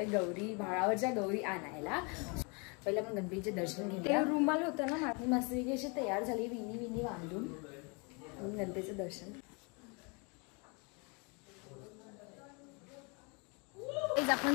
गौरी भाळावरच्या गौरी आणायला. पहिले आपण गणपतीचे दर्शन घेऊया. रुमाल होता ना माझी मस्तपैकी अशी तयार झाली विनी बांधून गणपतीचं दर्शन. आपण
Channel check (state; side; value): quieter; right; 32.2 dB